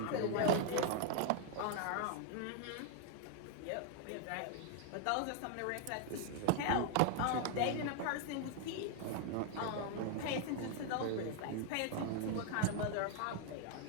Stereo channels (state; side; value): different; both; correlation 0.00